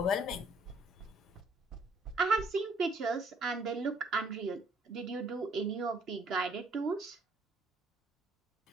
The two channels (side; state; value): both; normal; correlation 0.65